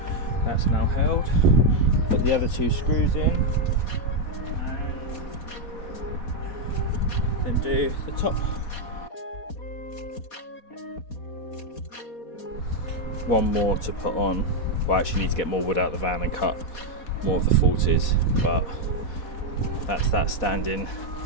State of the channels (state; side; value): late; right; 4.1 ms